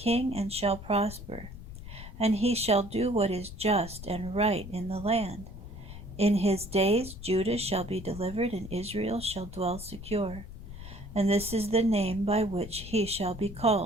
and shall prosper, and he shall do what is just and right in the land. In his days Judah shall be delivered, and Israel shall dwell secure. And this is the name by which he shall be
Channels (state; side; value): noise; left; rumble, 12 dB below the sound